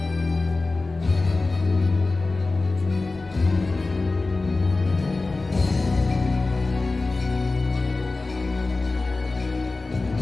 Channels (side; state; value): right; quieter; 3.5 dB